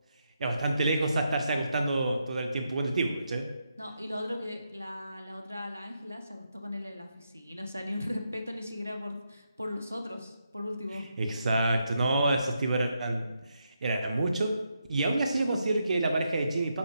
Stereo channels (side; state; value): both; inverted; correlation -0.82